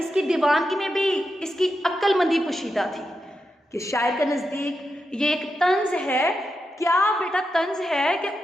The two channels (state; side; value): normal; both; correlation 0.87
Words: दीवानगी में भी इसकी अक्लमंदी पोशीदा थी कि शायर के नज़दीक ये एक तंज है। क्या बेटा तंज है कि